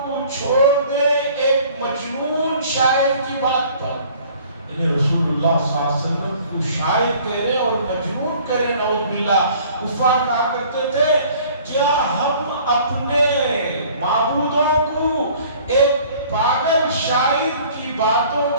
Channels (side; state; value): both; inverted; correlation -0.52